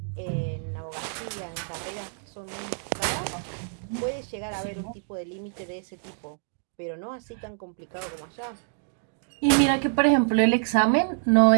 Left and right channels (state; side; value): silent; left; digital silence